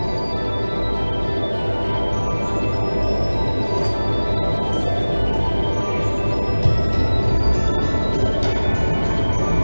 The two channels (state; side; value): inverted; both; correlation -1.00